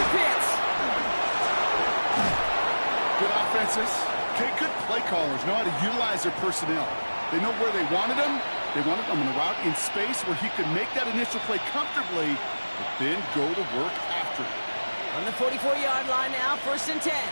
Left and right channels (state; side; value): inverted; both; correlation -1.00